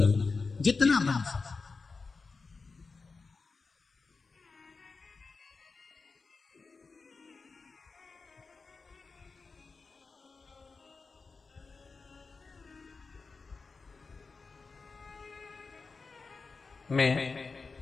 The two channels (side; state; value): right; quieter; 4.4 dB